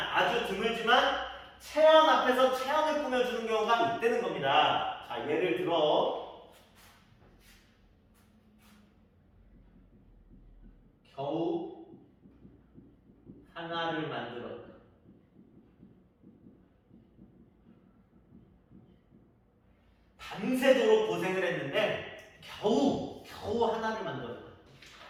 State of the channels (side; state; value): both; identical; correlation 1.00